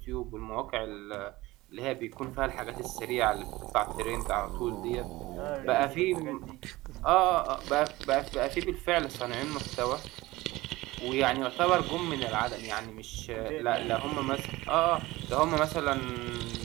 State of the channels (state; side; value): quieter; left; 19.4 dB